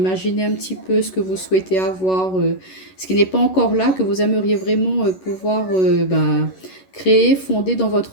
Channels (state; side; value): late; right; 11 ms